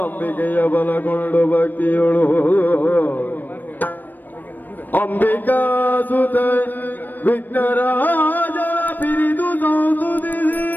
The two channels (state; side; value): late; right; 0.089 ms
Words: ಬಲಗೊಂಡು ಭಕ್ತಿಯೊಳು ಅಂಬಿಕಾ ಸುತ ವಿಘ್ನರಾಜ ಪಿರಿದು